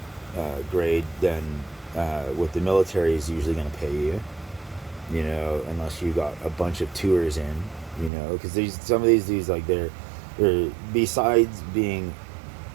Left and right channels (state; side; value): drops out; left; at 8.1 s